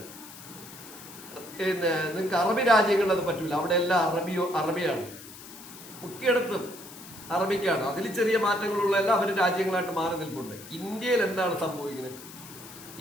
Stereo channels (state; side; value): noise; left; hiss, 16 dB below the sound